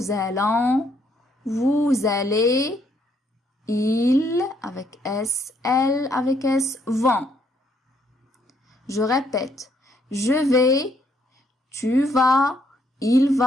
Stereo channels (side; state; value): both; normal; correlation 0.70